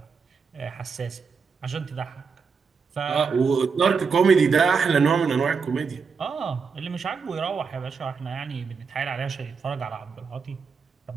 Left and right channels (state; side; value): quieter; left; 5.5 dB